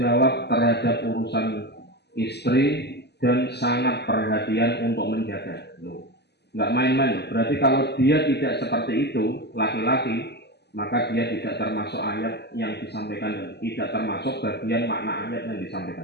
jawab terhadap urusan istri dan sangat perhatian untuk menjaga. Nggak main-main loh. Berarti kalau dia tidak seperti itu, laki-laki, maka dia tidak termasuk ayat yang disampaikan dan tidak termasuk bagian makna ayat yang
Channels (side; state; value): right; late; 0.49 ms